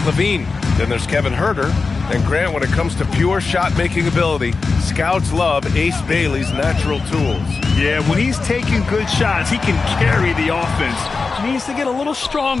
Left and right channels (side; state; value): right; quieter; 4.3 dB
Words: Then there's Kevin Huerter. And Grant, when it comes to pure shot-making ability, scouts love Ace Bailey's natural tools. Yeah, when he's taking good shots, he can carry the offense. He needs to get a little